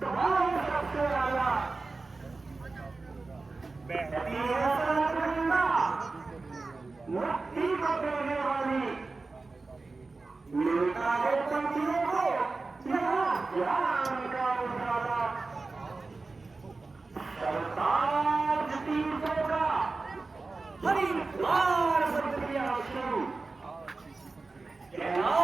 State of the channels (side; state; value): left; quieter; 3.7 dB